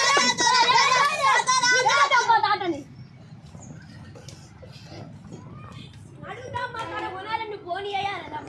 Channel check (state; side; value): identical; both; correlation 1.00